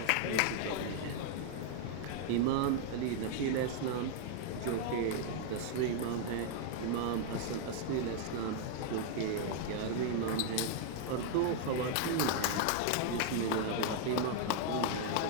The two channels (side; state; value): both; different; correlation 0.00